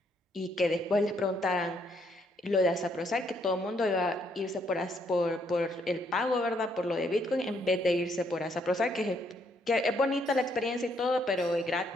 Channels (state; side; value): normal; both; correlation 0.71